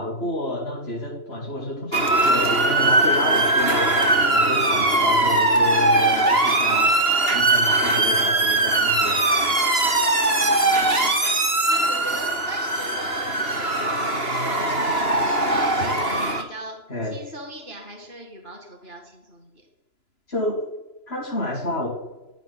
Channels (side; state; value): right; late; 2.9 ms